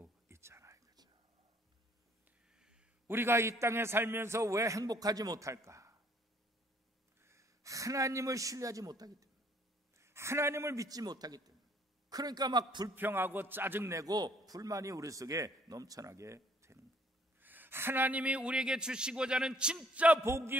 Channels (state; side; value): normal; both; correlation 0.62